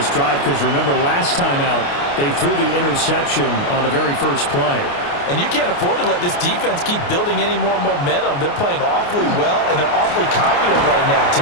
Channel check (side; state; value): right; late; 29 ms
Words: drive, because remember last time out, they threw the interception on the very first play. And you can't afford to let this defense keep building any more momentum. They're playing awfully well, and they're awfully confident right now. To